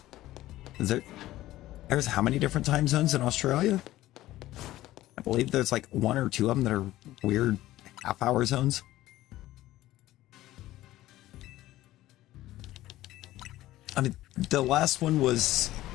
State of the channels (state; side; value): quieter; right; 15.6 dB